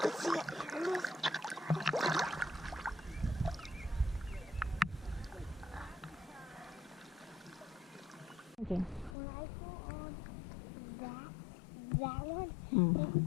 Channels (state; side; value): drops out; right; at 9.2 s